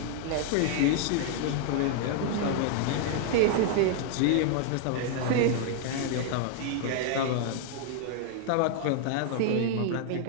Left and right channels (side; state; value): both; different; correlation 0.00